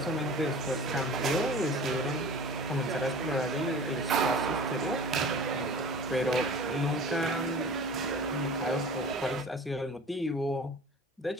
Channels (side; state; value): both; normal; correlation 0.41